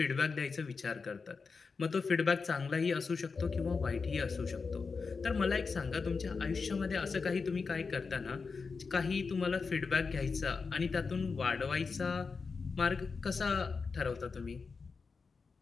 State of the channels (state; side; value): quieter; right; 4.8 dB